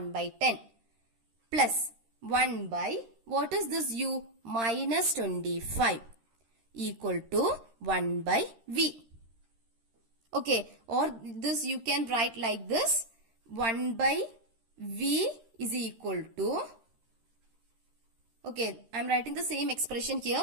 by 10 plus 1 by, what is this u? Minus 25 equal to 1 by v. Okay, or this you can write like this. 1 by v is equal to, okay, I am writing the same expression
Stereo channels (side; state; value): left; late; 13 ms